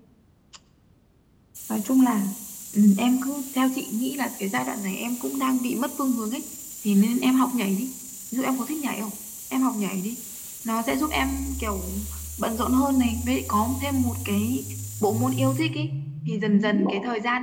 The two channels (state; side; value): identical; both; correlation 1.00